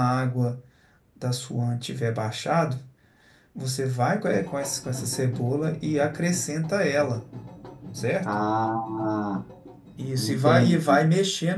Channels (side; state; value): both; identical; correlation 1.00